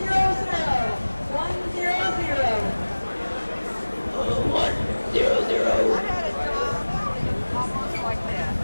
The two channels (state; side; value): inverted; both; correlation -1.00